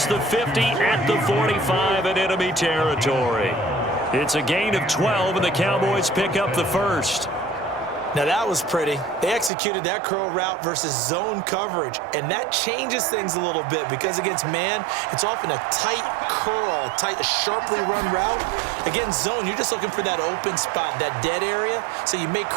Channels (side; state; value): left; drops out; at 9.5 s